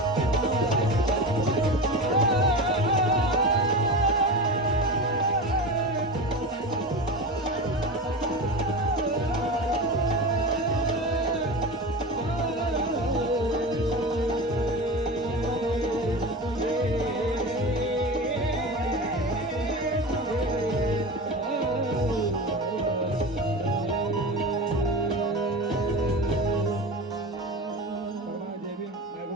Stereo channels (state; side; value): normal; both; correlation 0.27